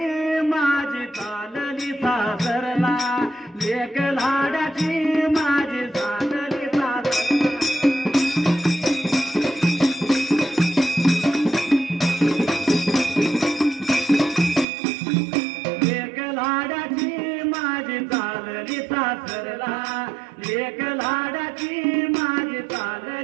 माझी चालली सासरला लेक लाडाची माझी चालली सासरला लेक लाडाची माझी चालली सासरला लेक लाडाची माझी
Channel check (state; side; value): drops out; left; at 14.7 s